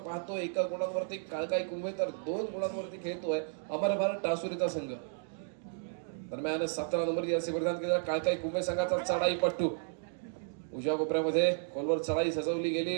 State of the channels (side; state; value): left; silent; digital silence